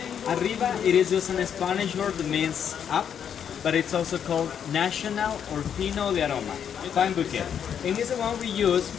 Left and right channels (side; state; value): right; quieter; 8.3 dB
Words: Arriba, it is just a Spanish word that means up, but it's also called national or fino de aroma, fine bouquet. And it's the one we use